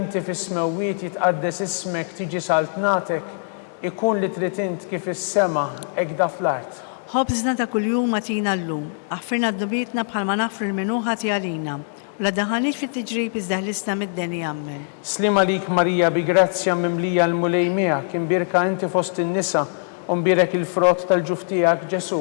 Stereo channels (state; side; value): silent; right; digital silence